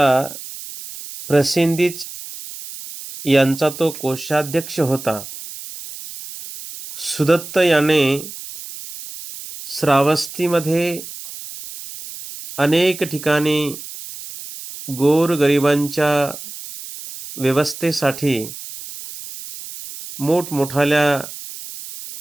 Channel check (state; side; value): noise; right; hiss, 12 dB below the sound